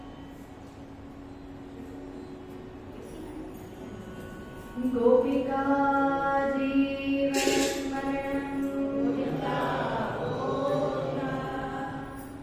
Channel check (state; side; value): identical; both; correlation 1.00